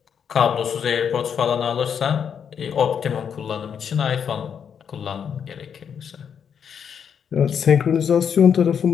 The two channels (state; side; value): quieter; right; 7.6 dB